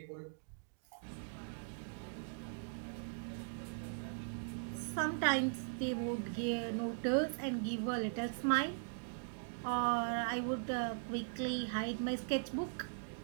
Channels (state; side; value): silent; left; digital silence